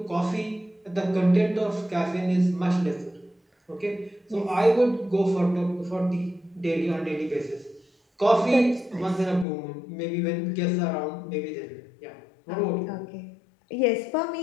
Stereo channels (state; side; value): drops out; right; at 9.5 s